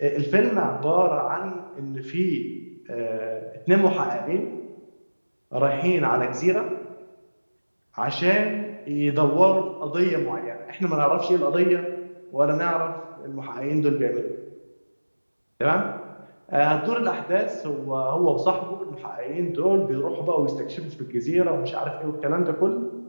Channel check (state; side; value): inverted; both; correlation -1.00